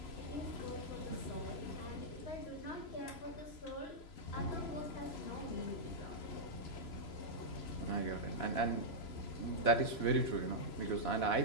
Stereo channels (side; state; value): right; late; 3.0 ms